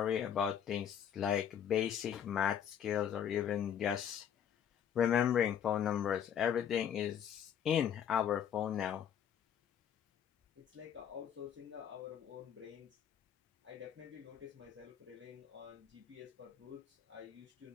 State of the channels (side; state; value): right; quieter; 9.0 dB